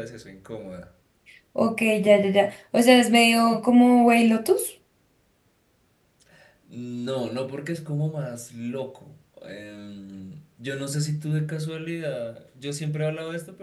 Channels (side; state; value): both; identical; correlation 1.00